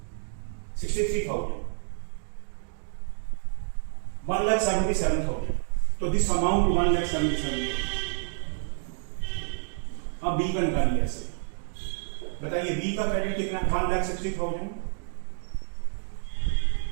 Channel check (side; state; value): left; silent; digital silence